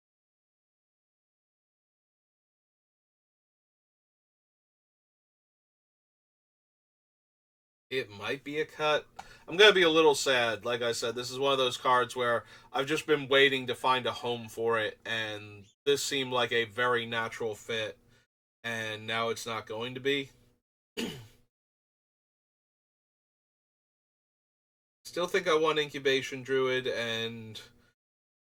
It might be a cut. I'm going to be a little sad. Like I said, this is one of those cards where I've just been waiting to find a home for it, and this seemed like a very natural fit, and now it's not going to be. Still think I want Incubation Druid and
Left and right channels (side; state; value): both; identical; correlation 1.00